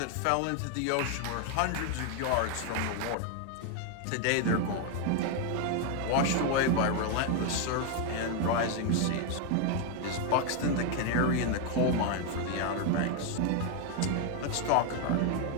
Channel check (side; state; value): both; different; correlation 0.01